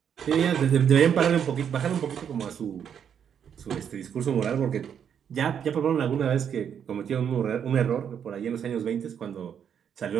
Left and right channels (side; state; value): left; quieter; 8.2 dB